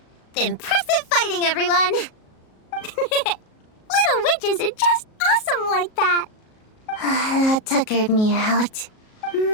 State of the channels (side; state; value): right; late; 37 ms